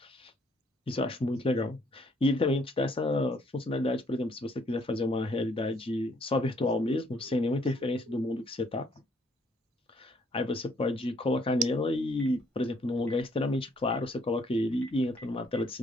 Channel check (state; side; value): normal; both; correlation 0.66